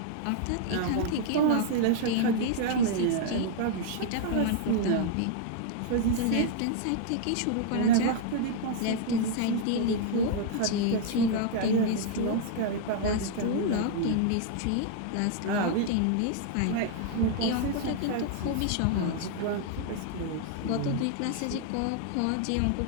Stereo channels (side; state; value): both; different; correlation -0.01